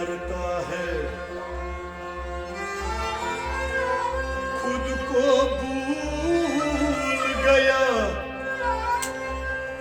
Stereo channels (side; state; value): both; identical; correlation 1.00